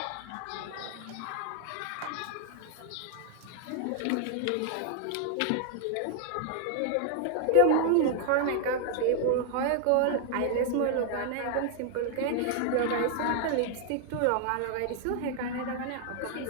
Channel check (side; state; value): both; different; correlation 0.00